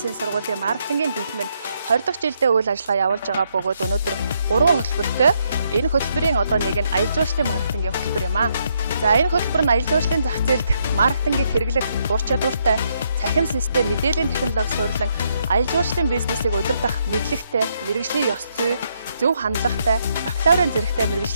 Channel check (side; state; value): both; inverted; correlation -0.75